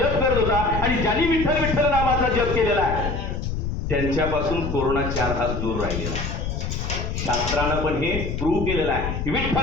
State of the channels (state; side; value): noise; left; rumble, 3 dB below the sound